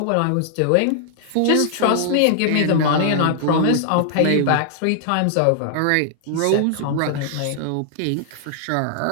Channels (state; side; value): different; both; correlation -0.01